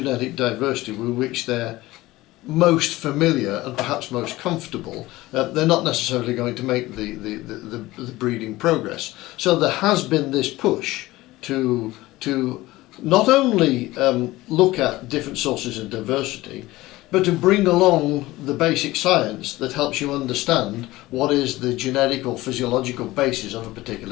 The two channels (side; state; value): right; quieter; 18.4 dB